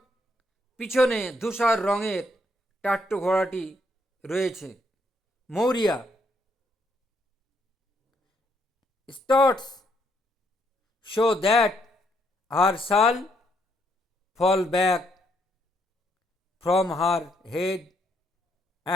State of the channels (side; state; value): both; normal; correlation 0.73